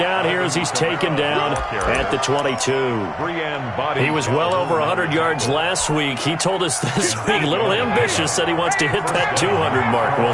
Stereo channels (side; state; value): both; identical; correlation 1.00